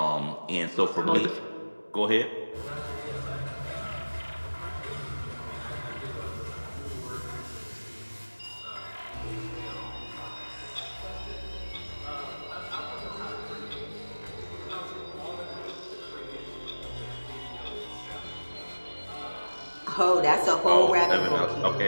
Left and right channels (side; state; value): both; inverted; correlation -1.00